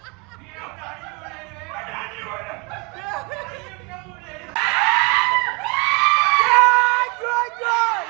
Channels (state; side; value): quieter; left; 30.5 dB